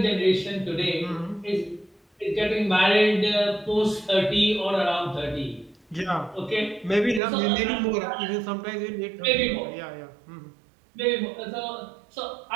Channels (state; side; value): drops out; left; at 7.2 s